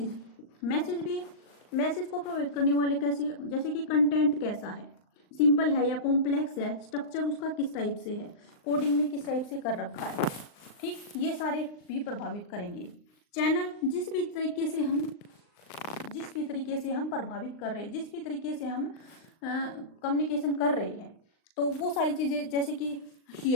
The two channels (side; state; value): right; late; 39 ms